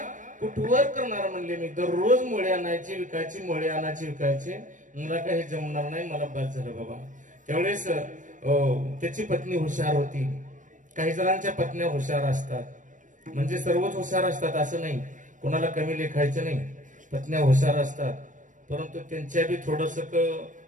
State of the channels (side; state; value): left; late; 0.37 ms